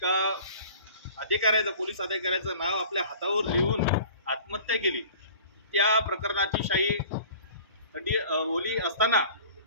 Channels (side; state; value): both; inverted; correlation -0.45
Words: अधिकाऱ्याचं, पोलीस अधिकाऱ्याचं नाव आपल्या हातावर लिहून आत्महत्या केली। त्या प्रकरणाची शाही ओली असताना